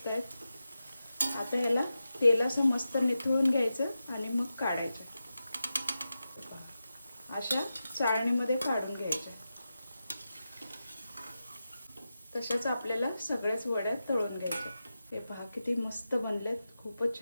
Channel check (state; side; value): inverted; both; correlation -0.91